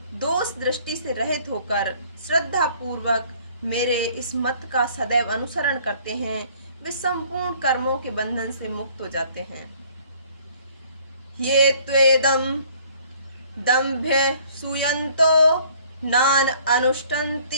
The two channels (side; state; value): both; inverted; correlation -0.57